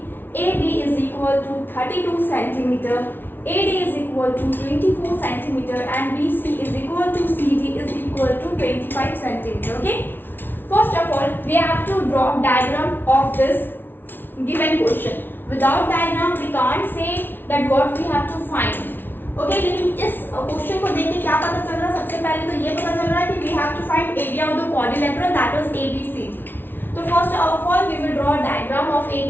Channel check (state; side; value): late; right; 0.098 ms